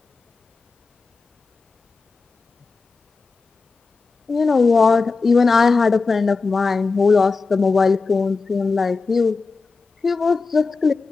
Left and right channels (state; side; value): quieter; right; 4.2 dB